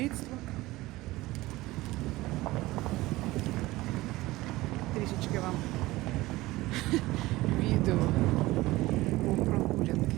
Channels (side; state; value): left; quieter; 18.9 dB